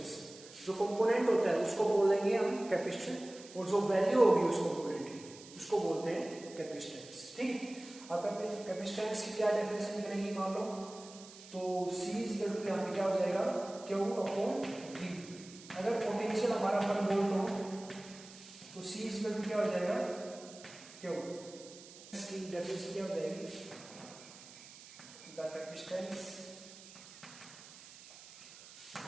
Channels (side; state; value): right; noise; hiss, 18 dB below the sound